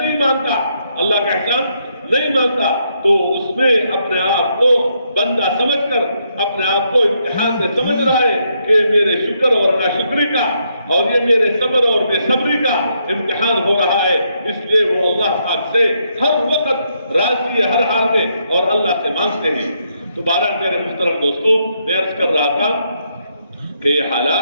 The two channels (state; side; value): inverted; both; correlation -0.77